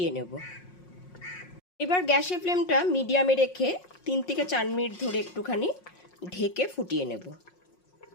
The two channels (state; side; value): late; right; 5.5 ms